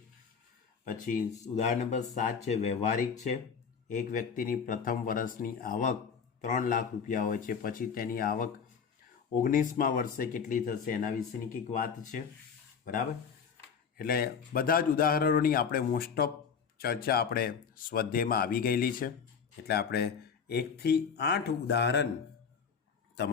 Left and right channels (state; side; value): quieter; right; 6.5 dB